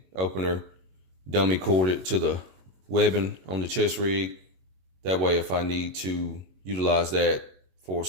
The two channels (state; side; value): late; left; 21 ms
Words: opener, dummy corded to the webbing on the chest rig. That way, if I need to utilize that for